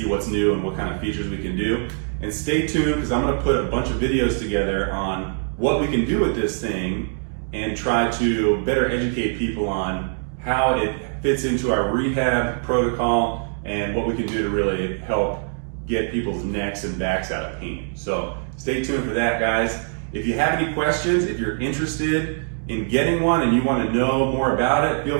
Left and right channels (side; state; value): left; silent; 59 dB below the other